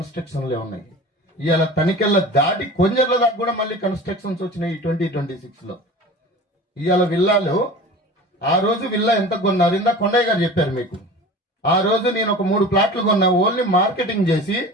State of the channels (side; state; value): both; normal; correlation 0.37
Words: ఉన్నాయి. ఇవాళ తనికెళ్ళ దాటి కొంజర్ల దాకా కూడా మళ్ళీ కన్స్ట్రక్షన్స్ వచ్చినాయి 2026లో. ఇవాళ విల్లాలు, ఆ రోజు విల్లా ఎంత కొన్నారు ఇందా కొండయ్య గారు చెప్పారు మీకు. ఆ రోజు నేను ఒక 3 ప్లాట్లు కొన్నా, ఓన్లీ మార్కెటింగ్ చేసి